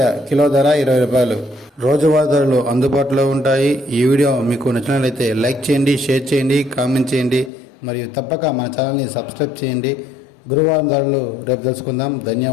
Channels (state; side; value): drops out; right; at 7.5 s